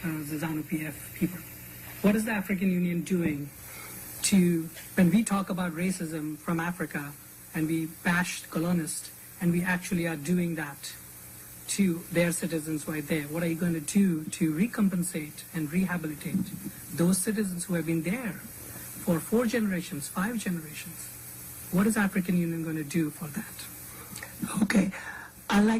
the ZANU-PF people. What is the African Union doing to, when we talk about racism from Africa and we bash colonialists, and we actually are doing that to their citizens right there, what are you going to do to recompensate and rehabilitate those citizens who have been there for 4 generations, 5 generations? What is African Union going to do for that? Okay, I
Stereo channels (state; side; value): identical; both; correlation 1.00